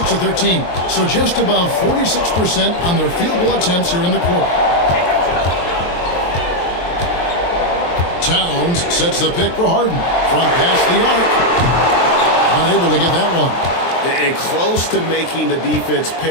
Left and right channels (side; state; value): right; late; 23 ms